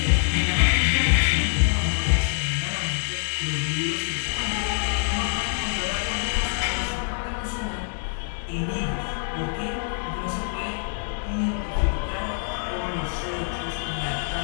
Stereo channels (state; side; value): silent; right; 62 dB below the other